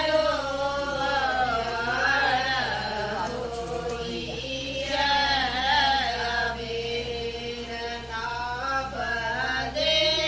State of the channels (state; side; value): identical; both; correlation 1.00